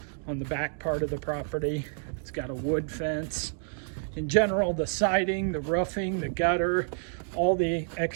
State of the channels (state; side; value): silent; left; digital silence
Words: on the back part of the property. It's got a wood fence. In general, the siding, the roofing, the gutter, all the